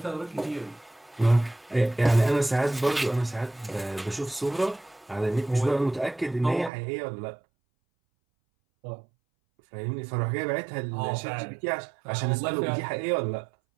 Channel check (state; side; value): drops out; left; at 6.7 s